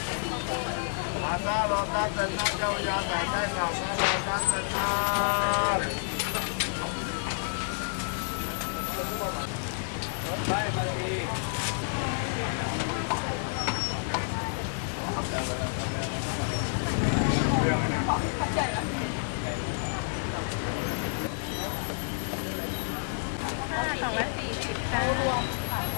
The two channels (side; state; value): right; silent; digital silence